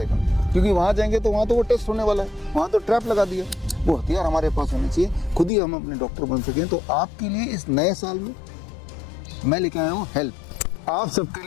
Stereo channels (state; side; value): drops out; right; at 5.5 s